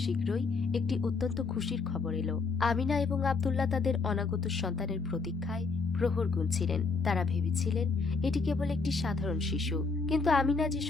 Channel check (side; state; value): right; quieter; 4.4 dB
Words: শীঘ্রই একটি অত্যন্ত খুশির খবর এলো। আমিনা এবং আব্দুল্লাহ তাদের অনাগত সন্তানের প্রতীক্ষায় প্রহর গুনছিলেন। তারা ভেবেছিলেন এটি কেবল একটি সাধারণ শিশু, কিন্তু আমিনা যে